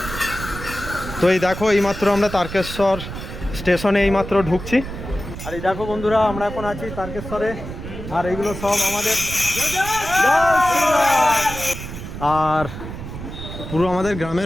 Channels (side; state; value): right; noise; rumble, 9 dB below the sound